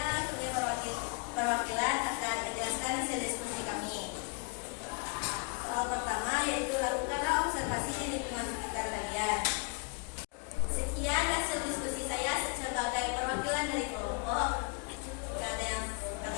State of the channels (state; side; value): quieter; right; 34.3 dB